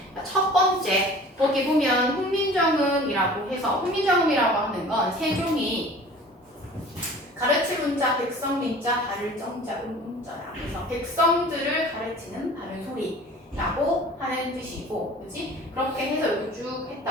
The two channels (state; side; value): normal; both; correlation 0.44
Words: 첫 번째 거기 보면 훈민정음이라고 해서 훈민정음이라고 하는 건 세종이 가르칠 문자 백성민자 바를 정자 음자라 그래서 백성들을 가르치는 바른 소리라고 하는 뜻이고, 그렇지? 그렇게 해서 이렇게 쭉